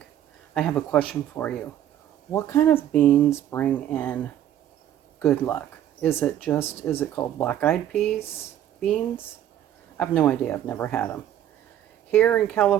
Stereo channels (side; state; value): left; quieter; 11.3 dB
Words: I have a question for you. What kind of beans bring in good luck? Is it called black-eyed peas beans? I have no idea. I've never had them. Here in